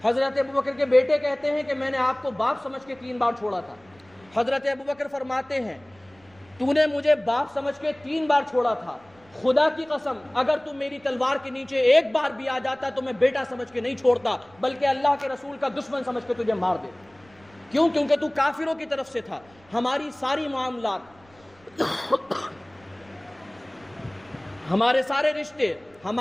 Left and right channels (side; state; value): right; noise; rumble, 29 dB below the sound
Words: حضرت ابوبکر کے بیٹے کہتے ہیں کہ میں نے آپ کو باپ سمجھ کے 3 بار چھوڑا تھا. حضرت ابوبکر فرماتے ہیں تو نے مجھے باپ سمجھ کے 3 بار چھوڑا تھا, خدا کی قسم اگر تم میری تلوار کے نیچے ایک بار بھی آ جاتا تو میں بیٹا سمجھ کے نہیں چھوڑتا بلکہ اللہ کے رسول کا دشمن سمجھ کے تجھے مار دے. کیوں؟ کیونکہ تو کافروں کی طرف سے تھا. ہماری ساری معاملات, ہمارے سارے رشتے,